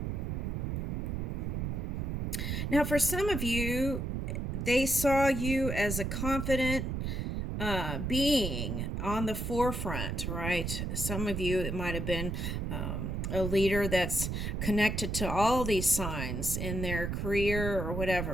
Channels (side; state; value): right; noise; rumble, 2 dB below the sound